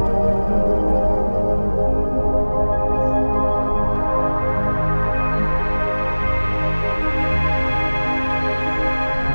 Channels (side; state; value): both; inverted; correlation -1.00